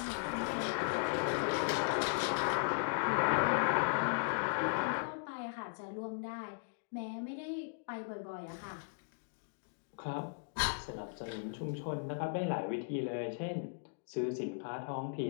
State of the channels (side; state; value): right; silent; digital silence